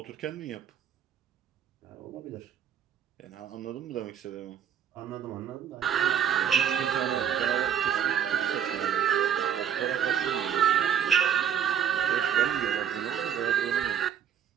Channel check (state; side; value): quieter; left; 8.9 dB